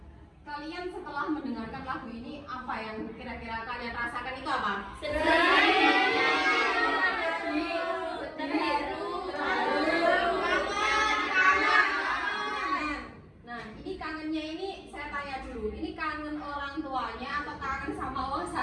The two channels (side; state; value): both; identical; correlation 1.00